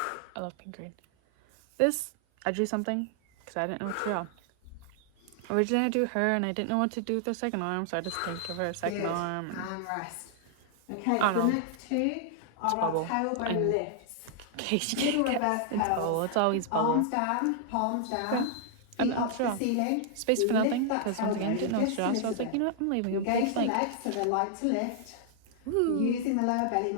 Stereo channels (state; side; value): different; both; correlation 0.00